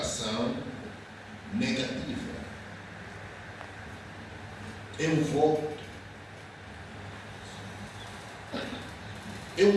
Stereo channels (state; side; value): identical; both; correlation 1.00